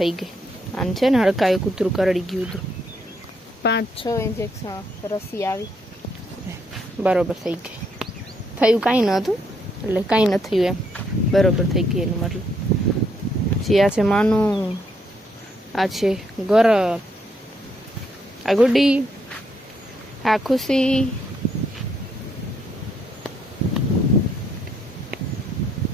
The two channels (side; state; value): both; normal; correlation 0.73